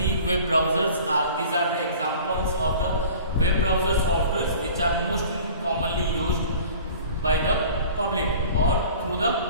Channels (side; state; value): both; inverted; correlation -0.44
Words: web browsers are the examples of the web browser softwares which are most commonly used by the public or through the